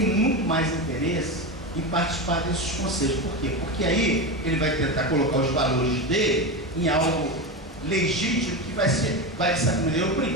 muito mais interesse em participar desses conselhos. Por quê? Porque aí ele vai tentar colocar os valores dele em algo legítimo que vai, de certa maneira,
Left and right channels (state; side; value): normal; both; correlation 0.19